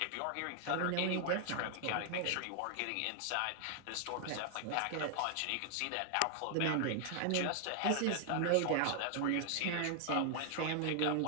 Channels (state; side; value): different; both; correlation 0.00